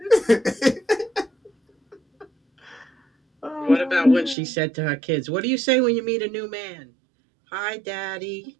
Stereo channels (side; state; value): left; drops out; at 4.4 s